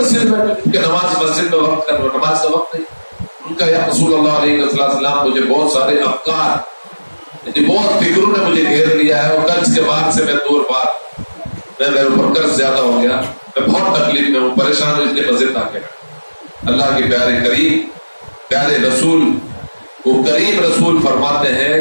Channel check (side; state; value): both; inverted; correlation -1.00